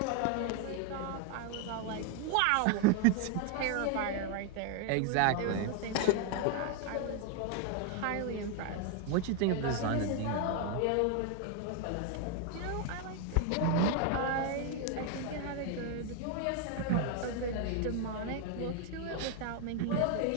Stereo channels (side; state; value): both; different; correlation 0.01